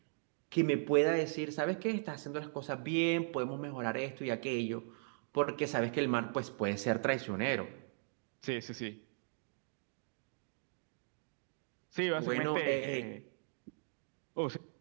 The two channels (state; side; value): silent; left; digital silence